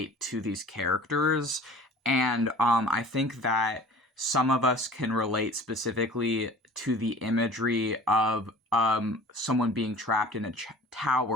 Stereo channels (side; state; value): both; normal; correlation 0.45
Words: to these characters. And I think that some of us can relate specifically to the imagery of someone being trapped in a